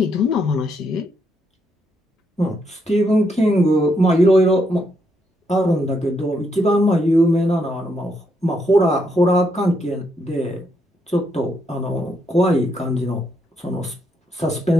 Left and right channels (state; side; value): normal; both; correlation 0.77